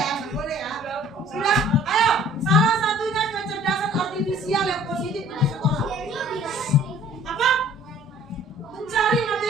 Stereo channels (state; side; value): normal; both; correlation 0.54